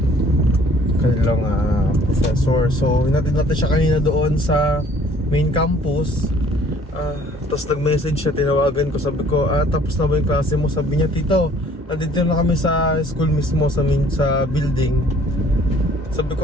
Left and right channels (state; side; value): normal; both; correlation 0.56